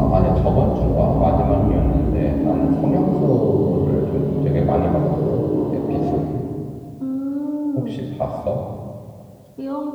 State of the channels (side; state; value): both; identical; correlation 1.00